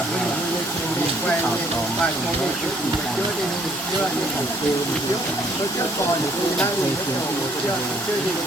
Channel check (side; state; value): both; normal; correlation 0.63